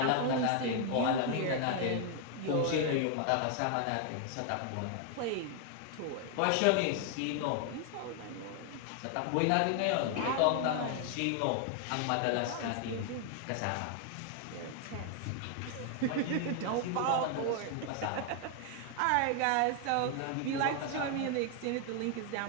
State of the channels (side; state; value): both; different; correlation 0.00